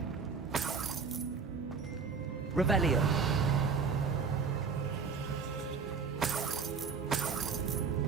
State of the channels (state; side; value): quieter; left; 5.5 dB